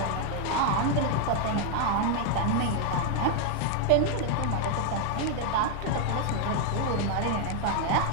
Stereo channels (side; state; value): both; different; correlation 0.01